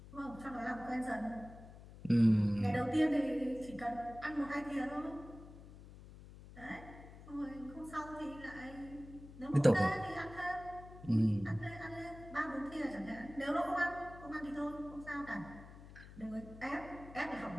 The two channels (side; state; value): left; noise; hum, 16 dB below the sound